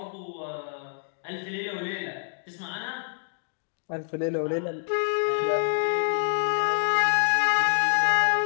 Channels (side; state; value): right; silent; digital silence